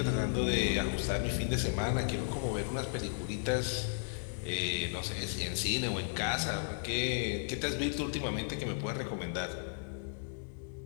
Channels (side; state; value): right; silent; digital silence